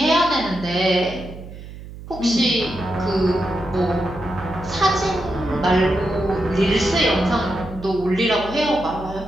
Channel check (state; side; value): noise; right; hum, 14 dB below the sound